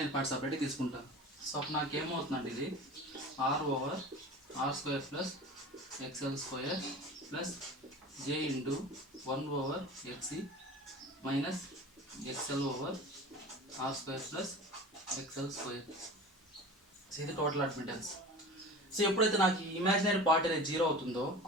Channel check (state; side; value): normal; both; correlation 0.37